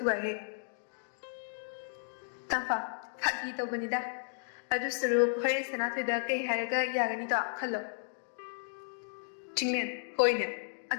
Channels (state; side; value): silent; right; digital silence